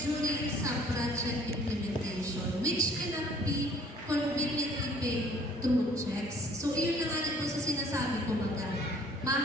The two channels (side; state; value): both; normal; correlation 0.56